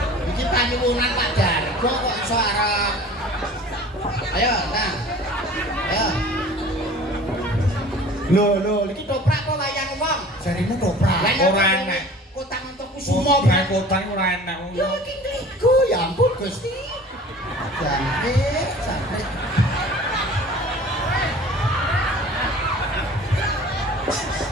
Iki panyuwunan Pak Dargo kok iso arep. Ayo, nah. Ayo. Lho, iki toprak apa wayang wong? Jarine toprak. Ora enak. Kota Montokusumo. Semua kotane ora enak. Ya iki ngligo ya ampun Gusti. Jangkrik.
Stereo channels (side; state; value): both; normal; correlation 0.44